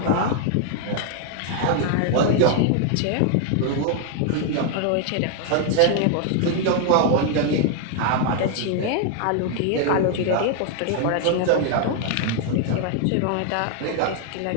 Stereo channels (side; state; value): both; different; correlation 0.00